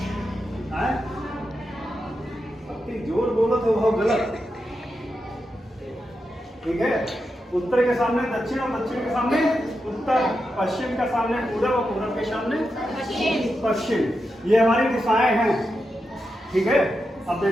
जोर बोलो तो बहुत गलत, ठीक है। उत्तर के सामने दक्षिण और दक्षिण के सामने उत्तर, पश्चिम के सामने पूरब और पूरब के सामने पश्चिम। ये हमारी दिशाएं हैं, ठीक है। अब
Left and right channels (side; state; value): both; normal; correlation 0.87